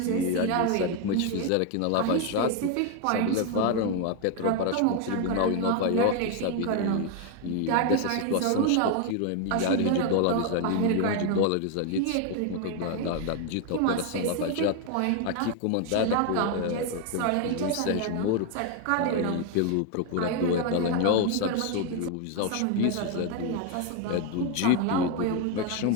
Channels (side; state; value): both; different; correlation 0.01